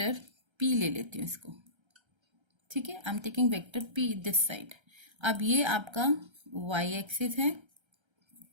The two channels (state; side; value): late; left; 1.3 ms